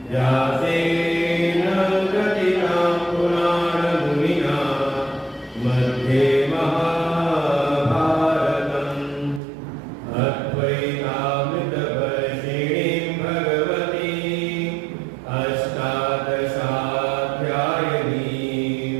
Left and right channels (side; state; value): left; drops out; at 9.4 s